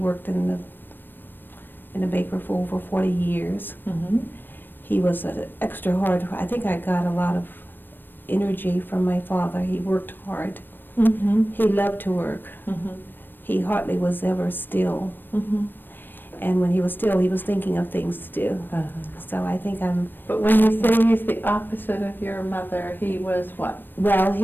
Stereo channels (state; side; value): late; right; 0.094 ms